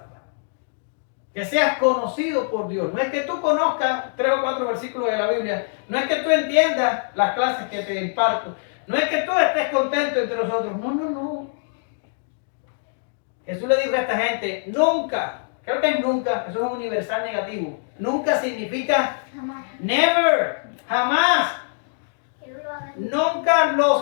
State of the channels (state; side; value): silent; right; digital silence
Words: Que seas conocido por Dios. No es que tú conozcas 3 o 4 versículos de la Biblia. No es que tú entiendas las clases que te imparto. No es que tú estés contento entre nosotros. No. Jesús le dijo a esta gente, nunca, creo que es nunca, eso es un universal negativo. Nunca significa Jamás. never, jamás. Nunca